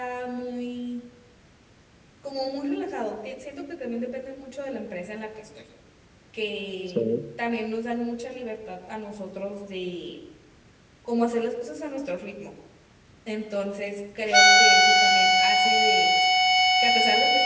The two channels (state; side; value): identical; both; correlation 1.00